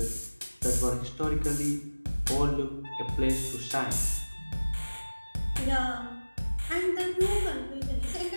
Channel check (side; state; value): both; inverted; correlation -1.00